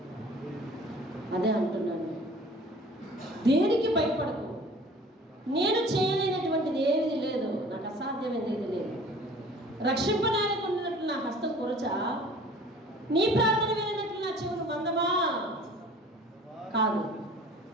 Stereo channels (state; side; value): normal; both; correlation 0.48